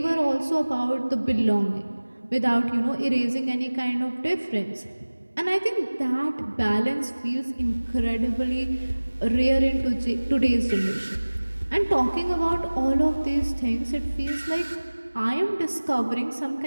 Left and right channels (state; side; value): inverted; both; correlation -1.00